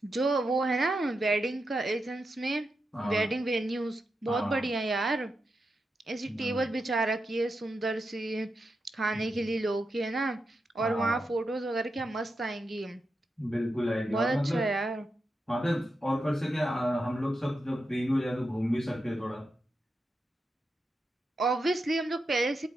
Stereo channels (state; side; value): normal; both; correlation 0.87